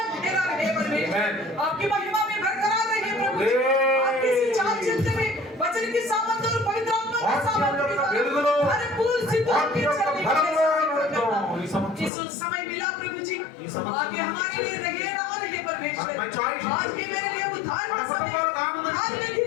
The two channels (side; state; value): right; drops out; at 12.1 s